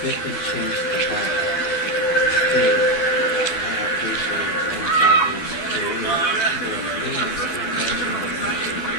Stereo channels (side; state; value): right; late; 12 ms